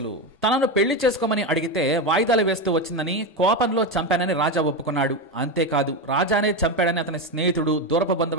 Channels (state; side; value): normal; both; correlation 0.14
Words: తనను పెళ్లి చేసుకోమని అడిగితే వాయిదాలు వేస్తూ వచ్చిందని, కోపంలో చంపానని రాజా ఒప్పుకున్నాడు. అంతేకాదు, రాజానే చంపాడని అతని స్నేహితుడు, దూరపు